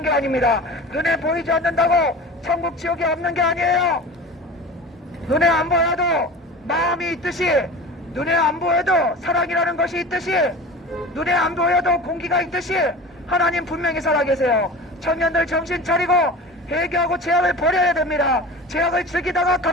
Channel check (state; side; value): normal; both; correlation 0.35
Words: 게 아닙니다. 눈에 보이지 않는다고 천국 지옥이 없는 게 아니에요. 눈에 안 보여도 마음이 있듯이, 눈에 안 보여도 사랑이라는 것이 있듯이, 눈에 안 보여도 공기가 있듯이 하나님 분명히 살아계세요. 청년들 정신 차리고 회개하고 죄악을 버려야 됩니다. 죄악을 즐기다가